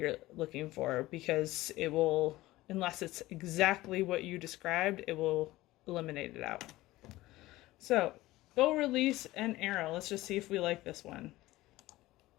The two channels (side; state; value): right; quieter; 17.7 dB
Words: looking for, because it will, unless it's exactly what you described, it will eliminate it out. So, bow release and arrow. Let's just see if we like this one.